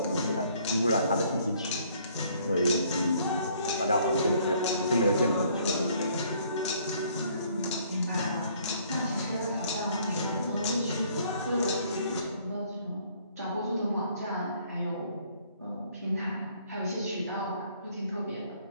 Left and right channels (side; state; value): both; inverted; correlation -0.62